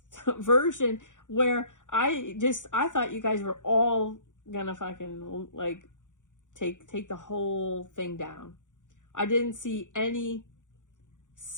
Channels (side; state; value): right; late; 0.86 ms